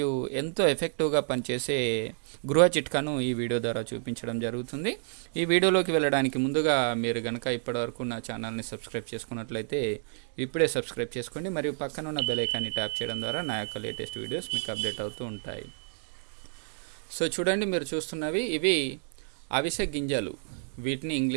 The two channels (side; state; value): left; silent; digital silence